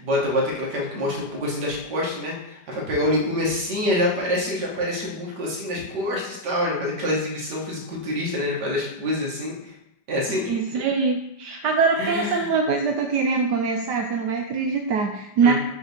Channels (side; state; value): left; late; 5.1 ms